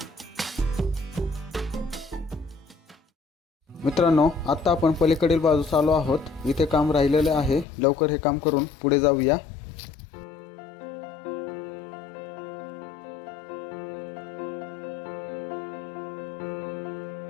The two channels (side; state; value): right; drops out; at 7.7 s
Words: मित्रांनो, आता आपण पलीकडील बाजूस आलो आहोत. इथे काम राहिलेले आहे. लवकर हे काम करून पुढे जाऊया.